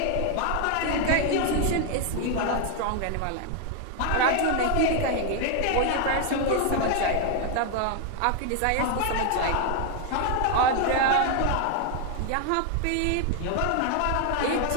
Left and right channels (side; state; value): both; different; correlation 0.00